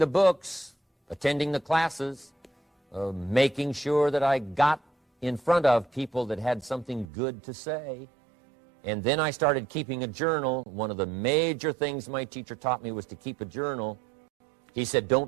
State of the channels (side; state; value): left; drops out; at 7.1 s